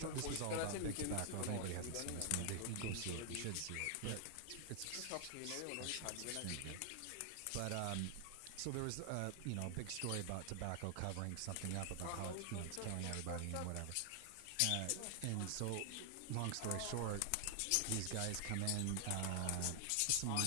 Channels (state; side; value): different; both; correlation 0.00